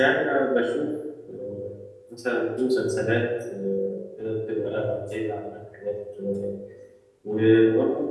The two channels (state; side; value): identical; both; correlation 1.00